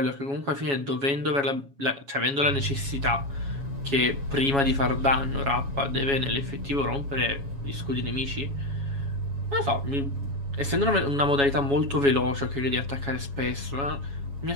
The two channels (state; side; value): late; left; 7.2 ms